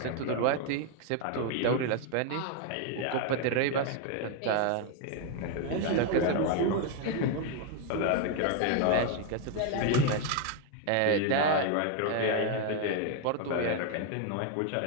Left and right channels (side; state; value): both; different; correlation 0.01